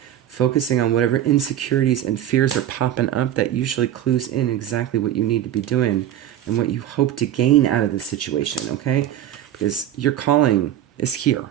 focusing on whatever insecurities and fears are popping up that usually clues in exactly what you need to be doing and what you hope to gain out of the situation, okay? Because your calling is here,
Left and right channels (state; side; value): quieter; left; 11.4 dB